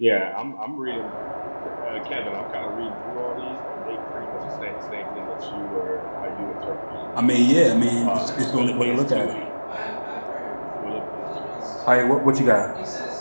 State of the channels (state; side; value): inverted; both; correlation -1.00